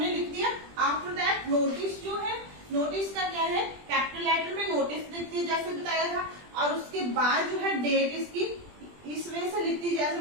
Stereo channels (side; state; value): left; late; 20 ms